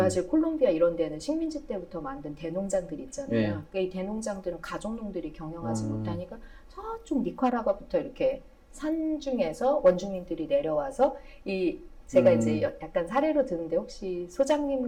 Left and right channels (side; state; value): both; identical; correlation 1.00